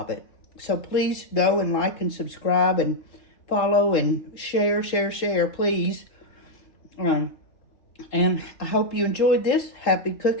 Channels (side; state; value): right; late; 3.7 ms